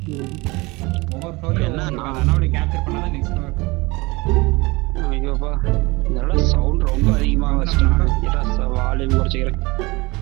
ஒவ்வொரு ஃப்ளோர்லயும் அனாமலி கேப்சர் பண்ணாதான் நெக்ஸ்ட் ஃப்ளோர். ஐயோப்பா, இதோட சவுண்ட் ரொம்ப அதிகமாக வச்சுட்டாங்க. வால்யூம் குறைச்சிக்கிறேன்.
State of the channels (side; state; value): left; quieter; 23.6 dB